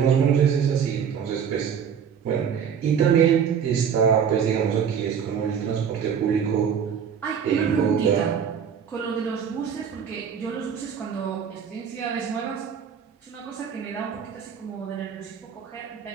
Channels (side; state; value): left; quieter; 7.5 dB